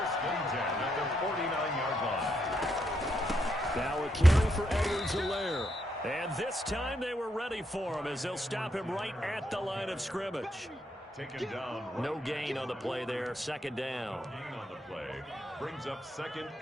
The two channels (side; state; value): both; normal; correlation 0.79